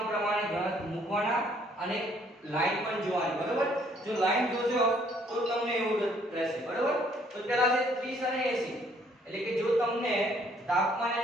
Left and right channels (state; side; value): normal; both; correlation 0.64